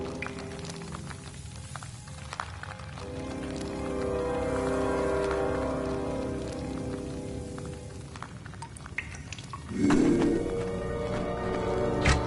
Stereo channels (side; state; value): both; identical; correlation 1.00